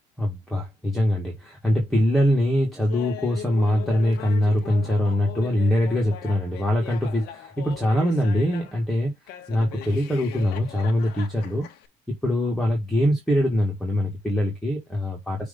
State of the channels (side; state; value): both; normal; correlation 0.87